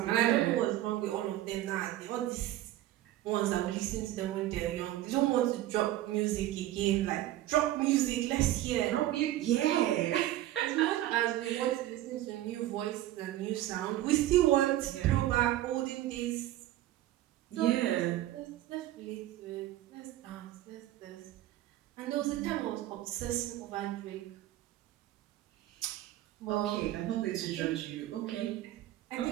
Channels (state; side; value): quieter; left; 14.4 dB